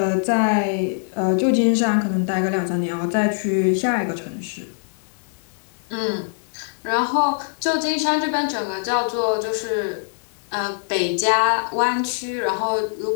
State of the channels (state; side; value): silent; right; 64 dB below the other